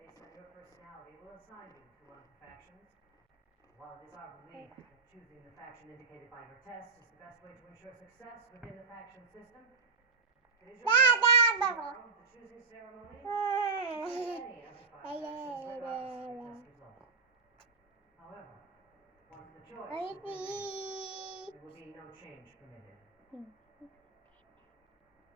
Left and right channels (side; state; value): left; quieter; 5.1 dB